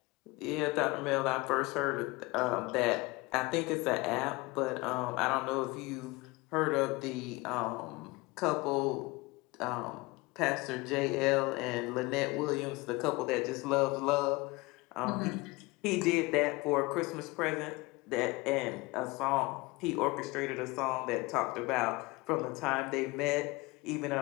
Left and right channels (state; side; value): quieter; right; 23.3 dB